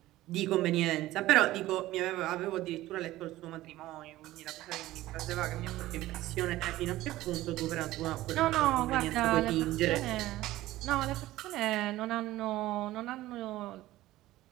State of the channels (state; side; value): quieter; left; 16.2 dB